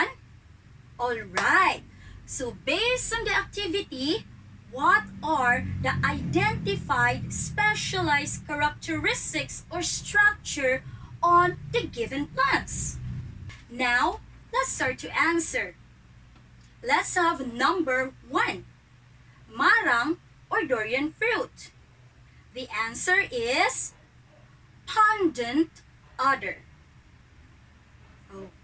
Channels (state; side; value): identical; both; correlation 1.00